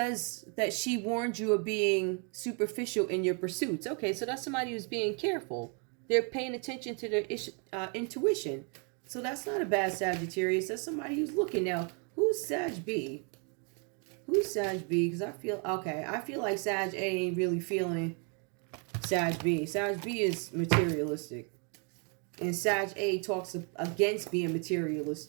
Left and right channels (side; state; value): left; quieter; 37.4 dB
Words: that she warned you of being superficial in your pursuits. Okay, so that's somebody who's being careful. They're paying attention to their intuition. So that's not a bad Sagittarius. That's somebody who's looking now. Who's Sag B? Who's Sag B? Because I feel like Sag A ain't really feeling Sag B. Sag B is materialistic. And Sag A talks against being